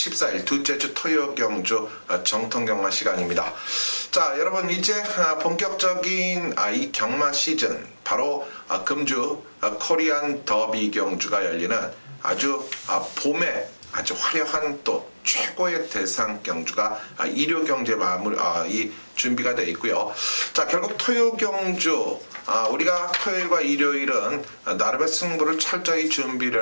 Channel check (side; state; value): both; inverted; correlation -1.00